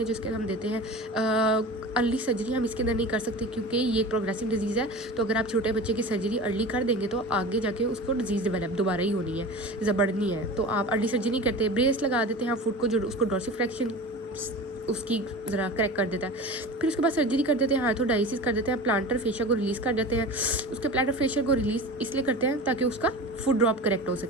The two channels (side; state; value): both; normal; correlation 0.33